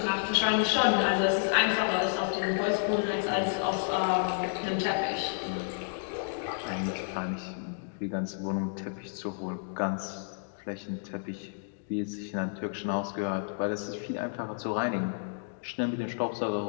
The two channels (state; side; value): silent; right; digital silence